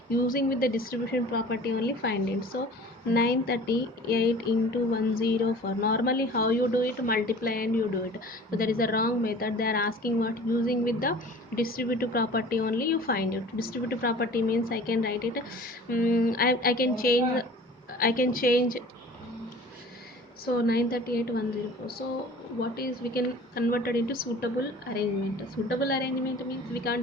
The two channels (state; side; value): normal; both; correlation 0.44